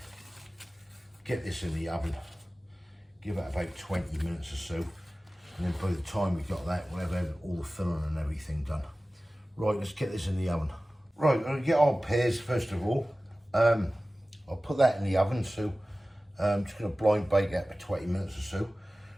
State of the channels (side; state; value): both; normal; correlation 0.97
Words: Get this in the oven. Give it about 20 minutes or so, and then by the time we've got that, we'll have all the filling and everything done. Right, let's get this in the oven. Right, I'm gonna get our pears first of all. I'll put that in the oven, so I'm just gonna blind bake that for 20 minutes or so.